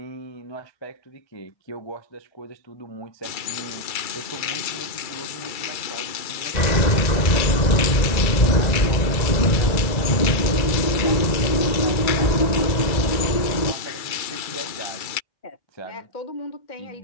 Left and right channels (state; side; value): late; right; 2.3 ms